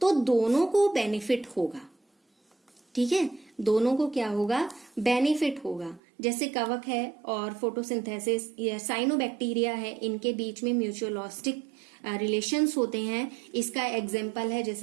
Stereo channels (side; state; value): left; drops out; at 6.0 s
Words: तो दोनों को बेनिफिट होगा। ठीक है, दोनों को क्या होगा, बेनिफिट होगा। जैसे कवक है और फोटोसिंथेसिस या साइनोबैक्टीरिया है, इनके बीच में म्यूचुअलिस्टिक रिलेशंस होते हैं। इसका एग्जाम्पल है